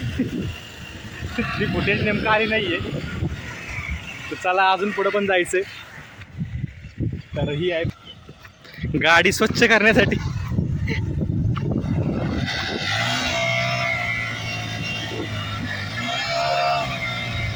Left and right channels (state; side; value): identical; both; correlation 1.00